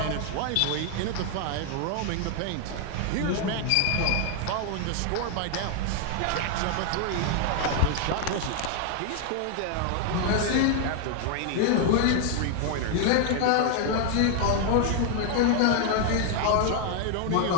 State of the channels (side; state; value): both; different; correlation 0.00